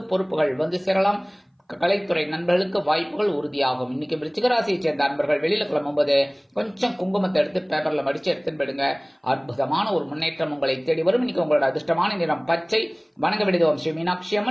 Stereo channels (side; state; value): both; identical; correlation 1.00